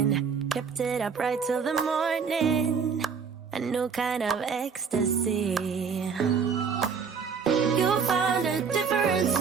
kept it up right till the morning. A new kind of ecstasy. You found a different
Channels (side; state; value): left; quieter; 6.1 dB